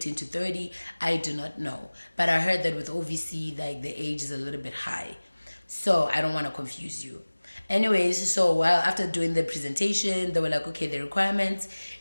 to 30. I do not know. But I heard that with OVC, like the age is a little bit high. So I don't want to confuse you. Anyways, so while after doing the presentation, they were like, okay, the requirements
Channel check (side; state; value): both; inverted; correlation -1.00